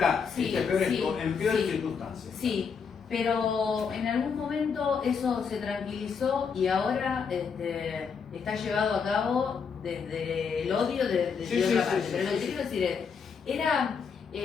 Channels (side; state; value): right; quieter; 6.1 dB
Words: En peores circunstancias. Sí, pero en algún momento eso se tranquilizó y ahora está llevado a cabo desde el odio de otra parte. Pero lo que quiero decir es,